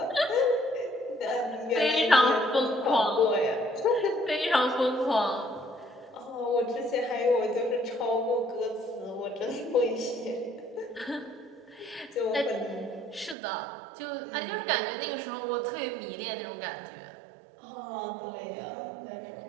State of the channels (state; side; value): drops out; left; at 13.4 s